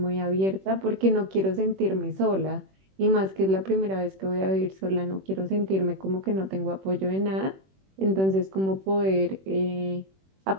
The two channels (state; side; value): late; left; 21 ms